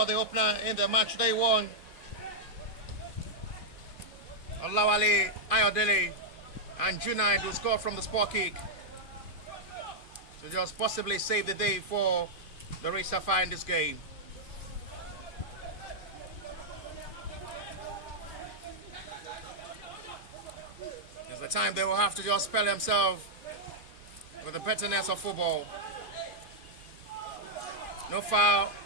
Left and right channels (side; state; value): right; late; 2.5 ms